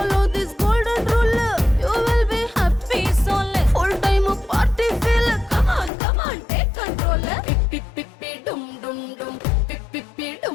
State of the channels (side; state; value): right; drops out; at 5.9 s